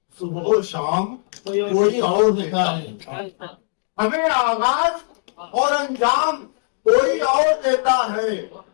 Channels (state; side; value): silent; right; digital silence